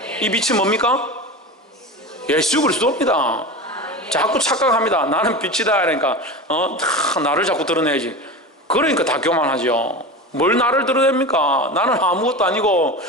이 빛이 뭡니까? 예수 그리스도입니다. 자꾸 착각합니다. 나는 빛이다. 그러니까 나를 자꾸 드러내야지. 그러니까 다 교만하죠. 뭘 나를 드러냅니까? 나는 아무것도 아니고,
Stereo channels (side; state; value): both; normal; correlation 0.27